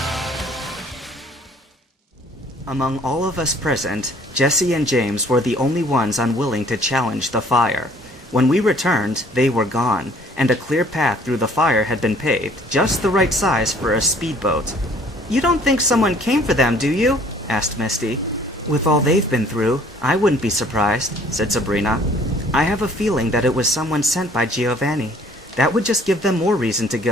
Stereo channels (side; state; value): both; normal; correlation 0.56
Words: Among all of us present, Jesse and James were the only ones unwilling to challenge the fire. When we returned, they were gone, and a clear path through the fire had been paved, just the right size for a speedboat. "You don't think someone came for them, do you?" asked Misty. "With all they've been through, I wouldn't be surprised," said Sabrina. "I have a feeling that it was someone sent by Giovanni. That would just give them more reason to